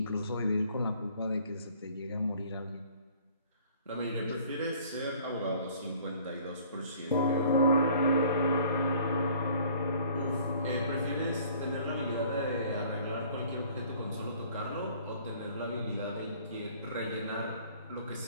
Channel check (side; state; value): both; inverted; correlation -0.55